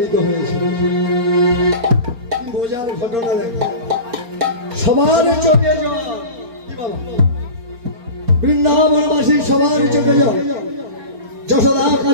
হয়েছে। কি বোঝার ঘটনা দেখা, সবার চোখে জল। বৃন্দাবনবাসী সবার চোখে জল। যশোদা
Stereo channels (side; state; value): left; late; 4.3 ms